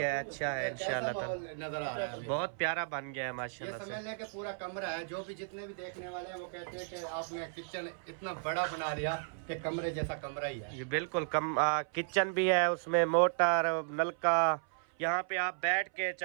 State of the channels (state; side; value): silent; left; 55 dB below the other